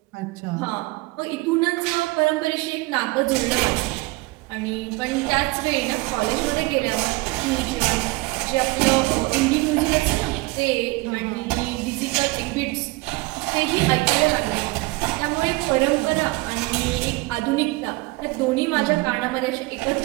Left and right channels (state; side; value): quieter; left; 22.7 dB